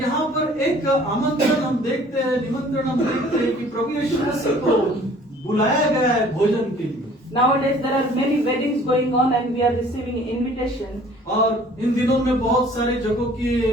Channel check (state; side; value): normal; both; correlation 0.53